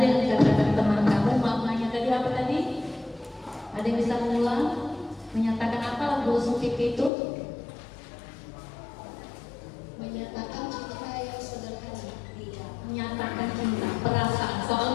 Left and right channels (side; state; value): right; drops out; at 7.1 s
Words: dikatakan teman kamu, maknanya tadi apa tadi? Ada yang bisa mengulang? Menyatakan apa lagu lesung pipi itu? Menyatakan cinta yang sederhana. Menyatakan cinta, perasaan.